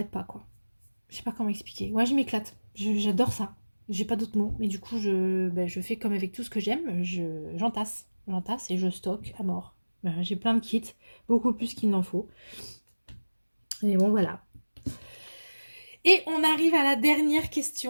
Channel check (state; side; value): inverted; both; correlation -1.00